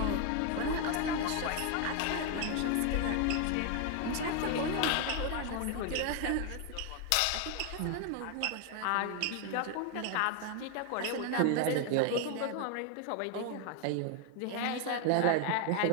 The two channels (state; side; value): different; both; correlation 0.01